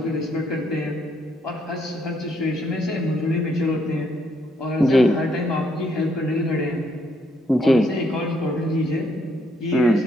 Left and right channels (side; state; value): both; normal; correlation 0.73